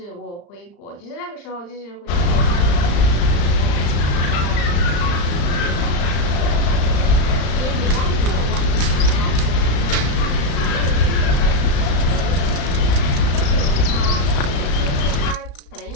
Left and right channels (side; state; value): right; late; 35 ms